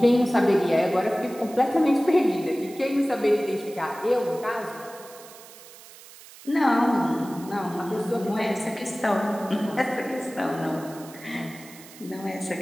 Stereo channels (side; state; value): right; noise; hiss, 19 dB below the sound